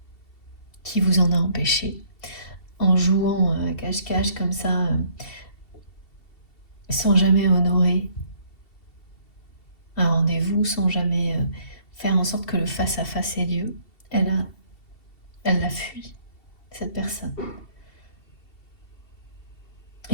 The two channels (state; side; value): late; right; 2.7 ms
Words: qui vous en a empêché, en jouant cache-cache comme ça, sans jamais honorer un rendez-vous, sans jamais faire en sorte que le face-à-face ait lieu. Elle l'a fui, cette personne.